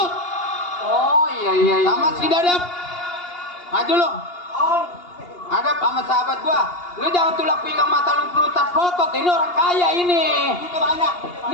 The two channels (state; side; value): late; right; 2.8 ms